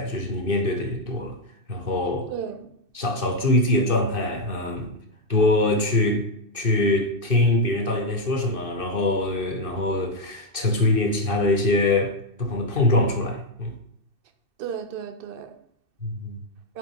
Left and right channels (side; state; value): left; late; 2.6 ms